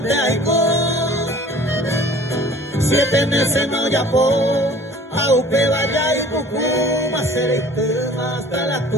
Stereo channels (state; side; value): normal; both; correlation 0.48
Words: Aicó. 7 meses no ya por Aupe vaya y Pucuma, seré tema hasta la